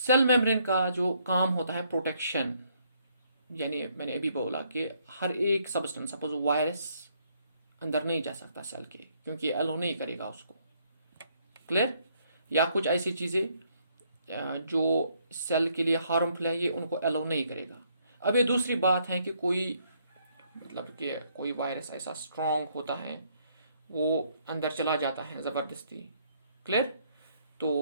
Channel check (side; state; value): both; inverted; correlation -0.70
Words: मेम्ब्रेन का जो काम होता है प्रोटेक्शन, यानी मैंने अभी बोला कि हर एक सब्सटेंस, सपोज वायरस अंदर नहीं जा सकता सेल के, क्योंकि एलो नहीं करेगा उसको। क्लियर? या कुछ ऐसी चीजें जो सेल के लिए हार्मफुल है, ये उनको एलो नहीं करेगा। अब ये दूसरी बात है कि कोई मतलब कि कोई वायरस ऐसा स्ट्रांग होता है, वो अंदर चला जाता है ज़बरदस्ती। क्लियर?